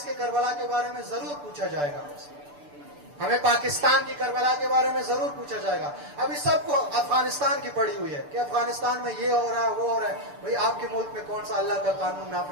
کے کربلا کے بارے میں ضرور پوچھا جائے گا. ہمیں پاکستان کی کربلا کے بارے میں ضرور پوچھا جائے گا. ابھی سب کو افغانستان کی پڑی ہوئی ہے کہ افغانستان میں یہ ہو رہا ہے, وہ ہو رہا ہے. بھئی آپ کے ملک میں کون سا اللہ کا قانون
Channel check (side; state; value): left; late; 6.8 ms